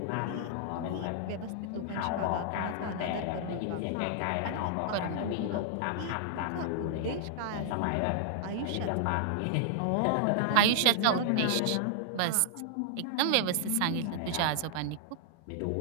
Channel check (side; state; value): both; different; correlation -0.01